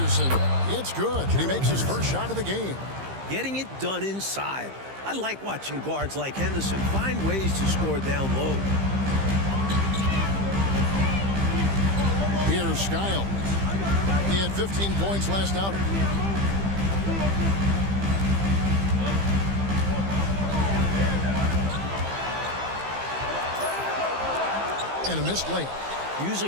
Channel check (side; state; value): left; late; 15 ms